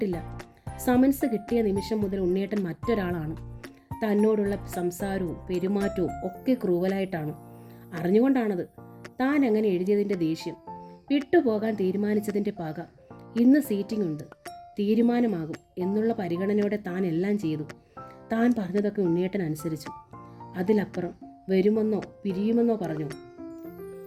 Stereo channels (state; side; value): identical; both; correlation 1.00